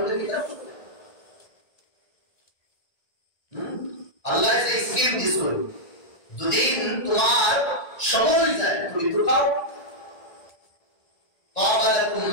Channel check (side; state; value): right; late; 1.9 ms